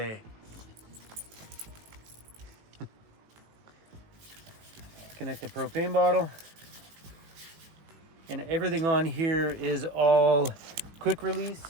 Connect the propane bottle. And everything on here is all quick release.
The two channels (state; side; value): late; left; 18 ms